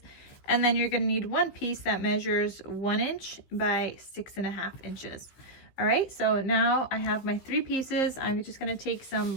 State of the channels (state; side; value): late; right; 15 ms